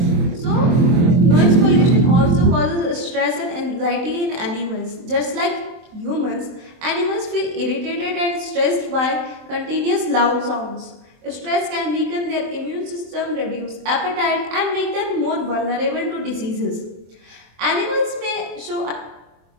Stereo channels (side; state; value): left; late; 23 ms